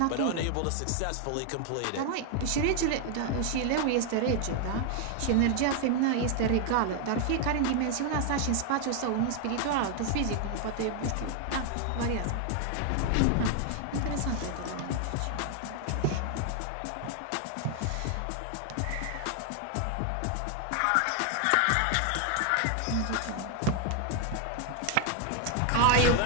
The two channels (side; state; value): both; different; correlation 0.00